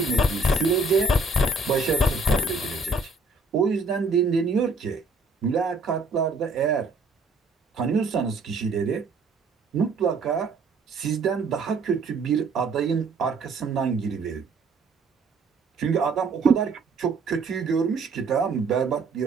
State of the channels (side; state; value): left; quieter; 3.6 dB